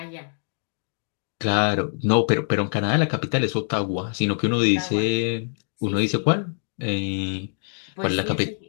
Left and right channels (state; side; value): silent; right; digital silence